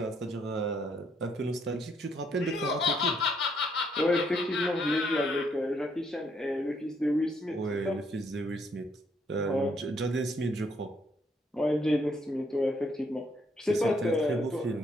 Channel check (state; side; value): normal; both; correlation 0.71